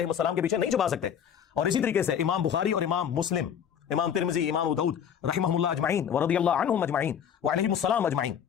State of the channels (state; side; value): quieter; right; 8.5 dB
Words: के पीछे नहीं छुपा सकते। और इसी तरीके से इमाम बुखारी और इमाम मुस्लिम, इमाम तिरमिज़ी, इमाम अबू दाऊद रहमहुल्लाह अजमाइन व रज़ियल्लाहु अन्हुम अजमाइन व अलैहिमुस्सलाम अजमाइन,